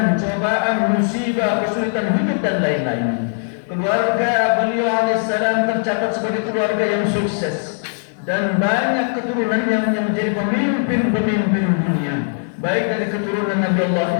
cobaan, musibah, kesulitan hidup dan lain-lain. Keluarga beliau alaihissalam tercatat sebagai keluarga yang sukses dan banyak keturunan yang menjadi pemimpin-pemimpin dunia, baik dari keturunan Nabi Allah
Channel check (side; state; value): right; silent; 66 dB below the other